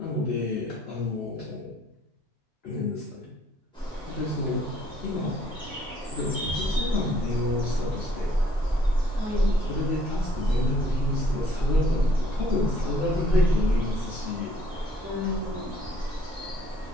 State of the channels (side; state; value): both; normal; correlation 0.62